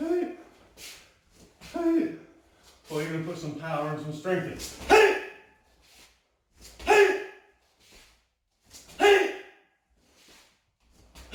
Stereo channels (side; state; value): both; identical; correlation 1.00